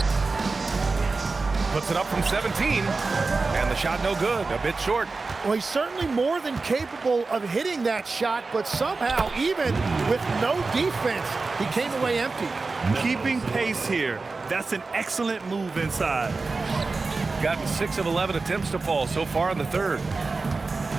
Puts it up from 17, and the shot no good, a bit short. Well, he's certainly more than capable of hitting that shot, but somehow, even with no defense, he came away empty. Keeping pace here. That's an excellent move inside. Gotten 6 of 11 attempts to fall so far in the third.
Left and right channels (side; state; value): left; quieter; 3.9 dB